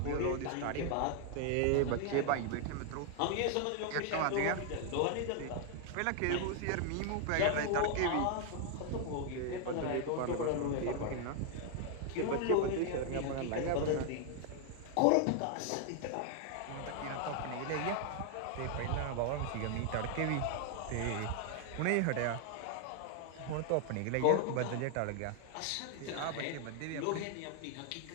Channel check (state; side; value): different; both; correlation 0.00